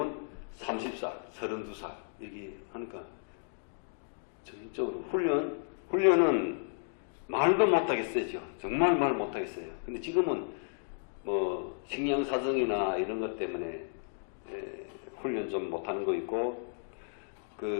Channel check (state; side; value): silent; right; digital silence